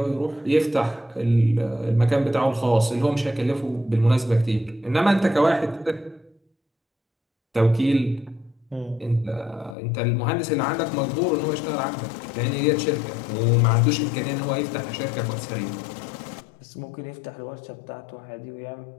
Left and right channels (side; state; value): right; drops out; at 9.8 s